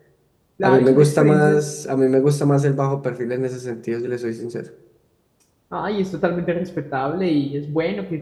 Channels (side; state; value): both; identical; correlation 1.00